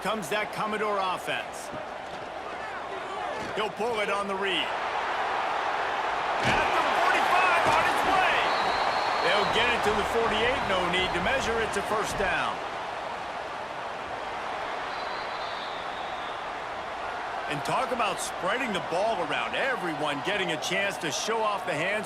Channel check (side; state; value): both; identical; correlation 1.00